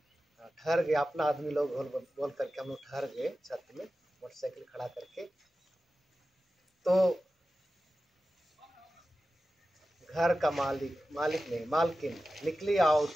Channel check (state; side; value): normal; both; correlation 0.94